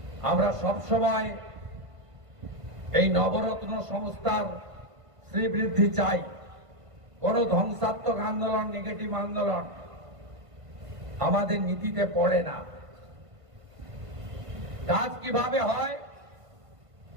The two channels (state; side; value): late; left; 1.5 ms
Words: আমরা সবসময় এই নবরত্ন সংস্থার শ্রীবৃদ্ধি চাই। কোন ধ্বংসাত্মক আন্দোলন, নেগেটিভ আন্দোলন আমাদের নীতিতে পড়ে না। কাজ কিভাবে হয়?